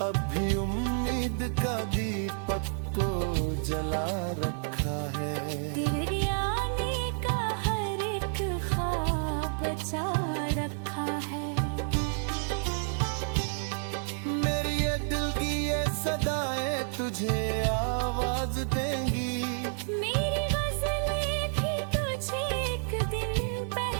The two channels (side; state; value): left; silent; digital silence